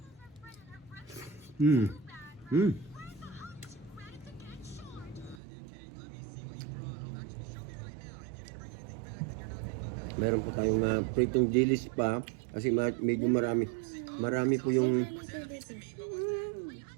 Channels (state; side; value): drops out; left; at 5.4 s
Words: Meron po tayong pritong dilis pa kasi medyo marami po yung